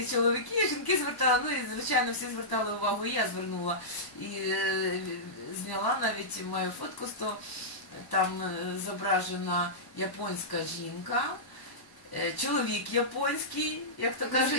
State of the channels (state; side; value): late; right; 1.1 ms